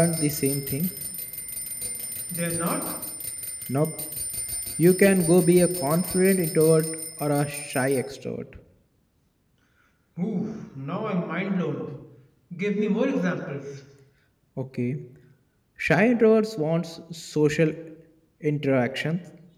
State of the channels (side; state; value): both; identical; correlation 1.00